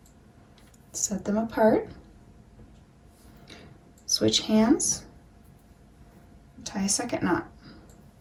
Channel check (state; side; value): identical; both; correlation 1.00